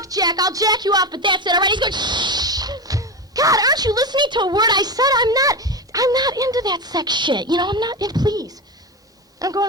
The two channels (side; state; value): both; normal; correlation 0.20